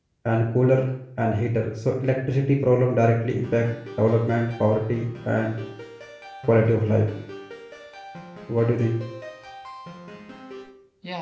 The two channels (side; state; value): both; identical; correlation 1.00